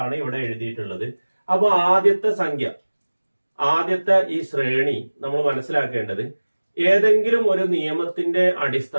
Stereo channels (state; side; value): inverted; both; correlation -1.00